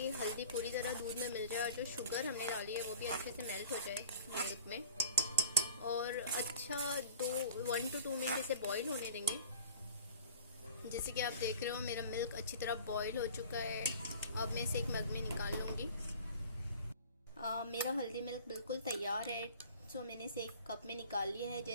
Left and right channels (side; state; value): both; inverted; correlation -0.44